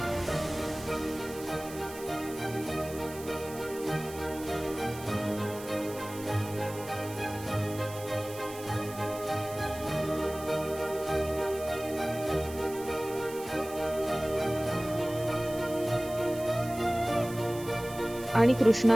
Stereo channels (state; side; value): noise; right; hiss, 15 dB below the sound